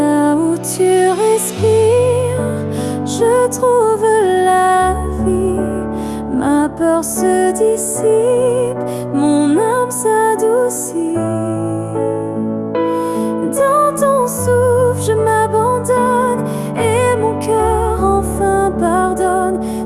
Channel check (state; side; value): identical; both; correlation 1.00